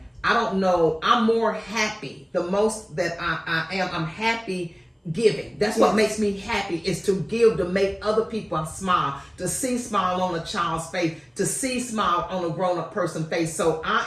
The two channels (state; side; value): identical; both; correlation 1.00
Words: I don't know, I'm more happy. The most that I am, I'm happy giving. That's what makes me happy, is to give, to make other people smile, to see smile on a child's face, to see smile on a grown-up person's face. So